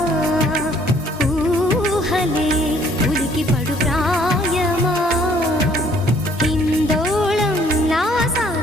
ఊహలే ఉలికి పడు ప్రాయమా ఇందోళంలా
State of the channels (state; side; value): normal; both; correlation 0.61